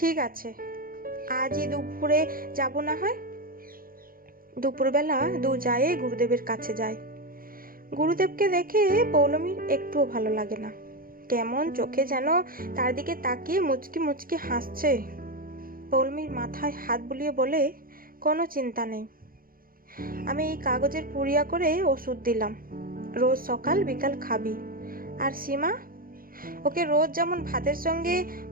আছে, আজই দুপুরে যাব না হয়। দুপুরবেলা 2 জায়ে গুরুদেবের কাছে যায়। গুরুদেবকে দেখে পৌলমীর একটুও ভালো লাগে না। কেমন চোখে যেন তার দিকে তাকিয়ে মুচকি মুচকি হাসছে। পৌলমীর মাথায় হাত বুলিয়ে বলে, কোনো চিন্তা নেই, আমি এই কাগজের পুড়িয়া করে ওষুধ দিলাম, রোজ সকাল বিকাল খাবি। আর সীমা, ওকে রোজ যেমন ভাতের সঙ্গে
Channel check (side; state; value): left; late; 0.42 ms